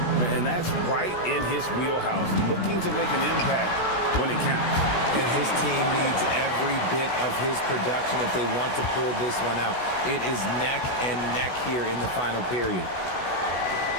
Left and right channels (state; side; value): late; right; 16 ms